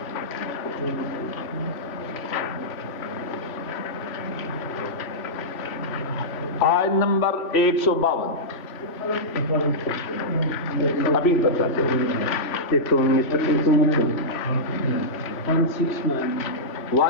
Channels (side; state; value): right; late; 3.1 ms